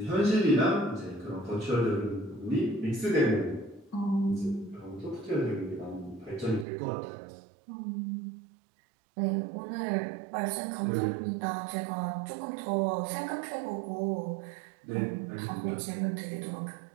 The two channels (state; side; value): drops out; left; at 6.7 s